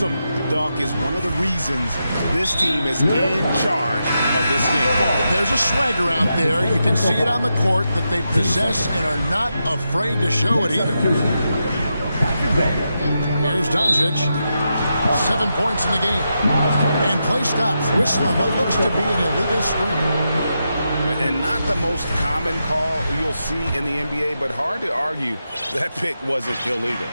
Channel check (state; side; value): inverted; both; correlation -0.86